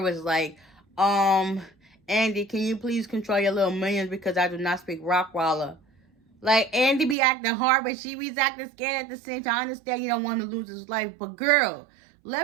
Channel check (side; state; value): left; drops out; at 7.2 s